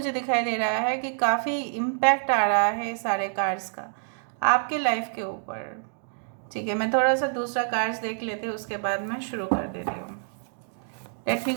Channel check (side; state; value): left; silent; digital silence